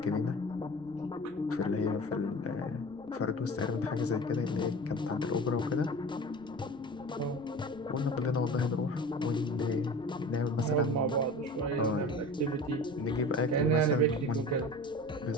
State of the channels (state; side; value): noise; right; rumble, 25 dB below the sound